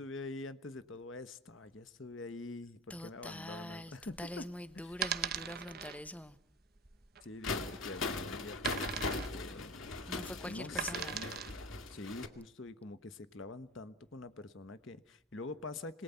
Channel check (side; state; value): both; normal; correlation 0.33